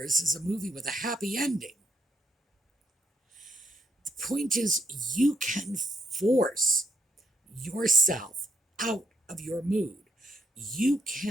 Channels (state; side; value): normal; both; correlation 0.74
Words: is a movie with a happy ending. The point is, you can force yourself out of your mood. You